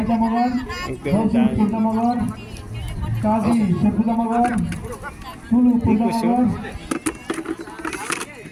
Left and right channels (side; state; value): both; identical; correlation 1.00